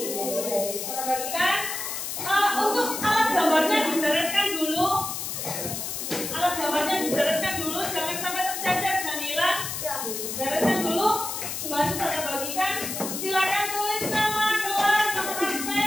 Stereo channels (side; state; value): left; noise; hiss, 5 dB below the sound